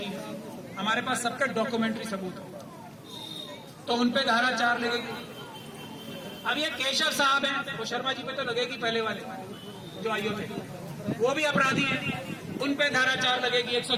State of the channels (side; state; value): both; identical; correlation 1.00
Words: हमारे पास सबका डॉक्यूमेंट्री सबूत है, तो उन पे धारा 4 लगेगी। अब ये केशव साहब हैं, वो शर्मा जी पे तो लगेगी, पहले वाले जो आईओ थे वो भी अपराधी हैं, उन पे धारा 4 लगेगी,